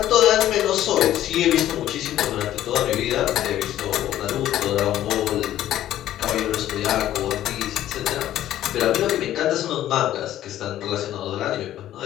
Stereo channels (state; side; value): quieter; right; 12.8 dB